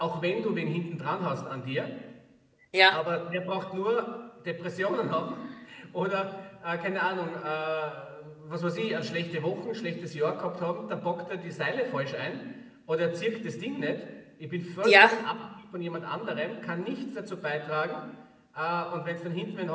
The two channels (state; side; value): identical; both; correlation 1.00